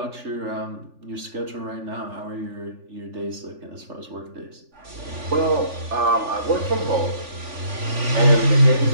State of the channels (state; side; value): late; left; 3.4 ms